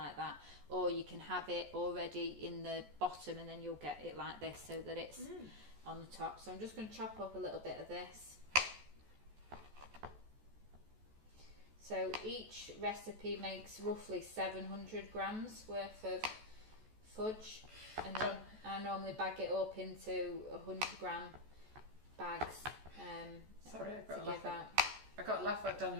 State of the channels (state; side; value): late; left; 14 ms